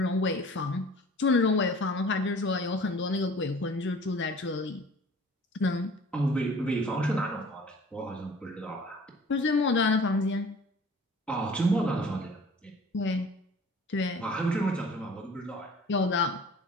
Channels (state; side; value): normal; both; correlation 0.47